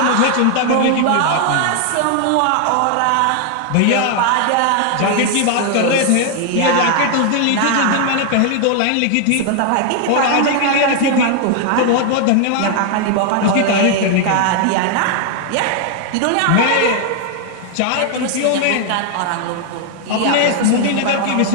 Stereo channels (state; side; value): different; both; correlation 0.00